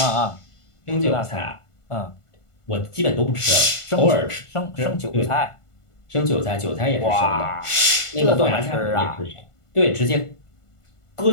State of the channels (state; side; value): late; right; 1.5 ms